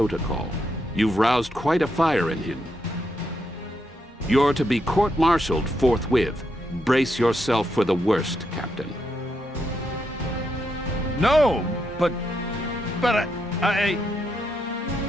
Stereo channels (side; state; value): both; normal; correlation 0.80